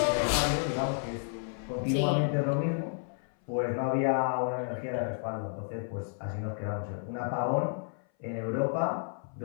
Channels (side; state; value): right; silent; 57 dB below the other